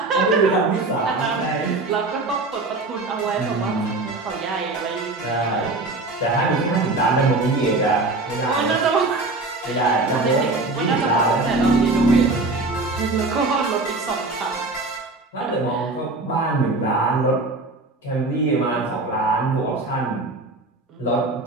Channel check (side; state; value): left; quieter; 3.2 dB